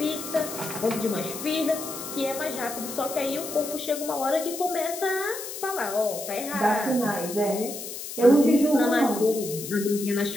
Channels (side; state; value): left; noise; hiss, 9 dB below the sound